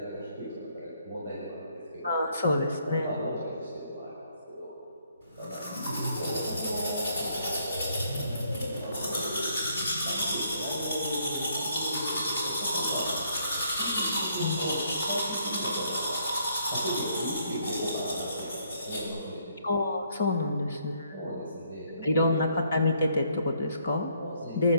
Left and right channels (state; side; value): inverted; both; correlation -0.69